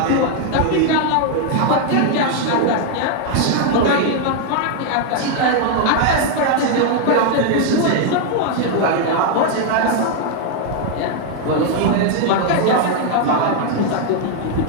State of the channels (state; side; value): different; both; correlation 0.00